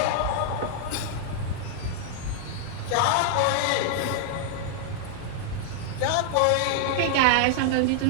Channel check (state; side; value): different; both; correlation 0.00